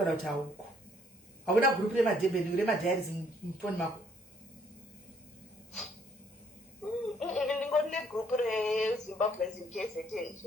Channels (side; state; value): both; normal; correlation 0.65